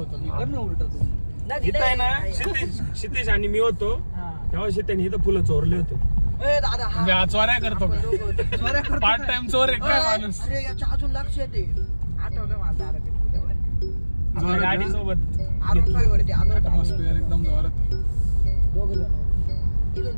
इथं आहे ना क्षितिज आणि मी होतो तेव्हा शेताने इथं फुलं चोरले होते. दादा म्हणजे हा चोऱ्या करतो का? पार्ट टाइम चोर आहे काय माणूस? अरे याच्या अजून लक्ष येते. आठवलं मला दादा ते फुल्यावर गाडी सोबत वरती आलो होतो. ॲटमॉस्फिअर एकदम जोरात आहे. दोघ जण इथून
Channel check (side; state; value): both; inverted; correlation -1.00